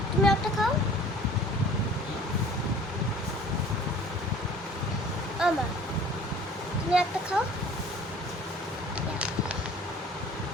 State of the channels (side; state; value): both; normal; correlation 0.49